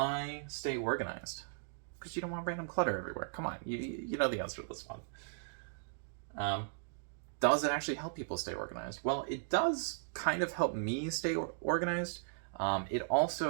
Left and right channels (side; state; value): left; silent; digital silence